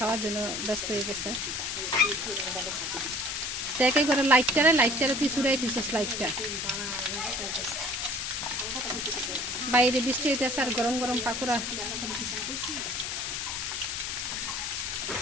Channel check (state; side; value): noise; left; hiss, 3 dB below the sound